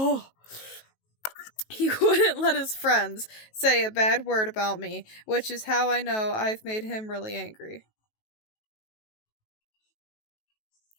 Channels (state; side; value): late; right; 19 ms